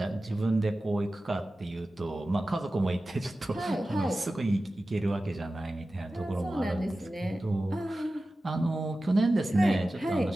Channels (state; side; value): normal; both; correlation 0.95